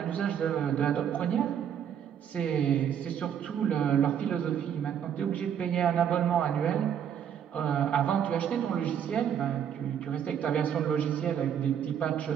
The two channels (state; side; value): quieter; left; 8.8 dB